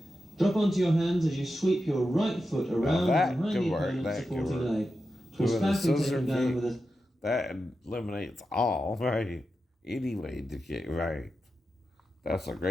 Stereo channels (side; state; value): both; normal; correlation 0.90